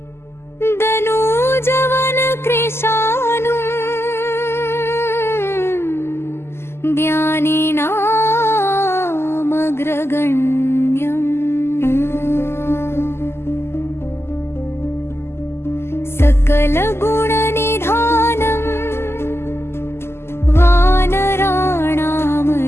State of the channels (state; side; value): late; right; 0.12 ms